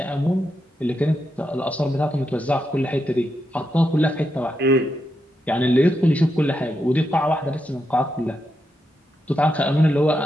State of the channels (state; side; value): normal; both; correlation 0.84